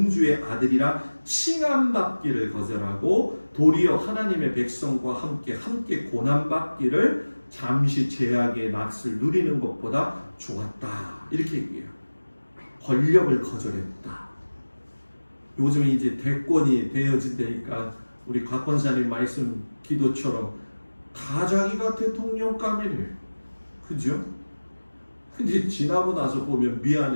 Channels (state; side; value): inverted; both; correlation -1.00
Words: 아들이라 칭함받기를 거절하고 도리어 하나님의 백성과 함께 고난받기를 잠시 제약의 낯을 누리는 것보다 좋았다. 이렇게 얘기해요. 권력을 거절했다. 요즘 이제 대권이 되어진다니까 우리 곽권사님 말씀 기도처럼 다 자기가 대통령감이래. 그죠? 근데 지나고 나서 보면